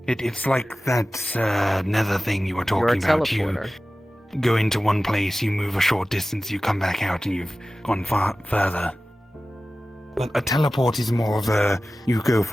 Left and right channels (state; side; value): normal; both; correlation 0.96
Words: It's like that nether thing you were You're a talking about. You teleporter. go into one place, you move a short distance, you come back out, and you've gone far further. But a teleport is more of a you go